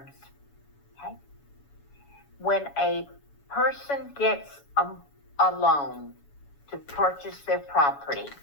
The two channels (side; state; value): right; late; 7.1 ms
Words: Okay. When a person gets a loan to purchase their property,